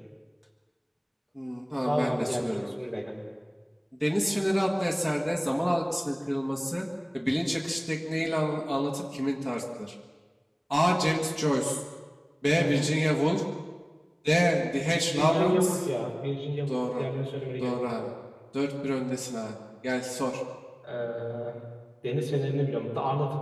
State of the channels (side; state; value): both; identical; correlation 1.00